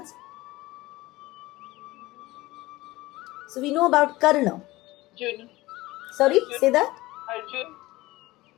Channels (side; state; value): right; quieter; 19.2 dB